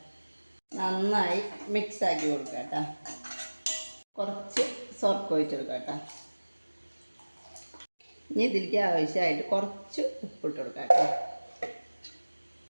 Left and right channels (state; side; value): inverted; both; correlation -1.00